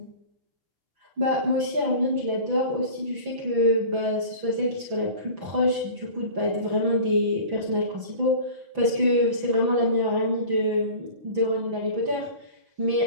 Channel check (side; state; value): left; late; 6.0 ms